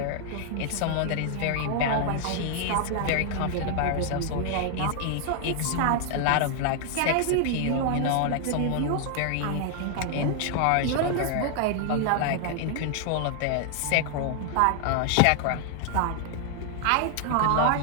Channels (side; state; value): both; different; correlation 0.00